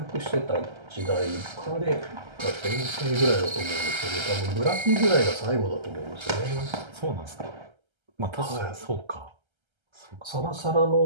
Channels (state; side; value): late; left; 1.3 ms